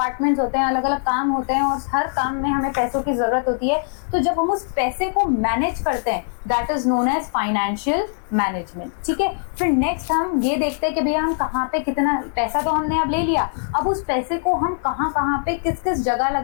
होते हैं, अलग अलग काम होते हैं और हर काम में हमें पैसों की जरूरत होती है, तो जब हम उस पैसे को मैनेज करते हैं that is known as financial management. ठीक है, फिर नेक्स्ट हम ये देखते हैं कि भैया हम कहाँ पे कितना पैसा तो हमने अब ले लिया, अब उस पैसे को हम कहाँ कहाँ पे किस किस जगह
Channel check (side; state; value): right; silent; 65 dB below the other